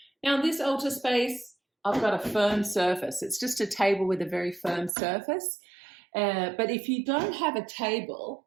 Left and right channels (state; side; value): drops out; left; at 4.9 s